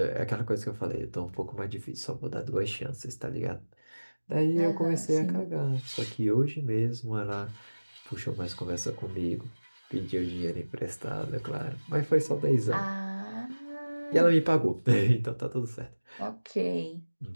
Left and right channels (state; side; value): inverted; both; correlation -1.00